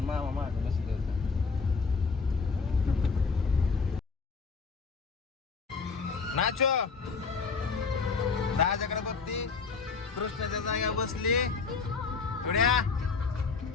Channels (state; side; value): quieter; right; 4.8 dB